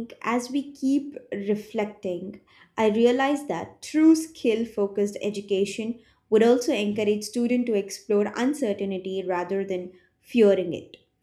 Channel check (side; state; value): both; identical; correlation 1.00